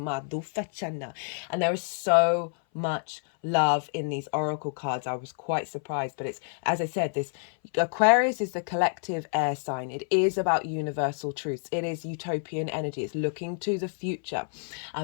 there is so much love in these oracle cards. I was quite surprised, but it's, as I said, this Aquarius is the collective air sign. It is about universal truths. It is utopian energy. It's looking to the future.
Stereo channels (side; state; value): right; silent; 59 dB below the other